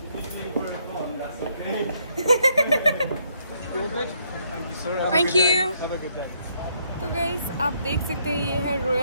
Thank you. तो गाइस आप देख सकते हैं ये है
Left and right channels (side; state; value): both; inverted; correlation -0.71